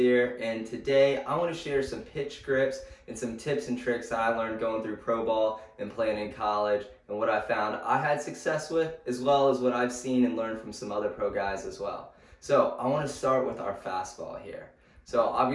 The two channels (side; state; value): both; identical; correlation 1.00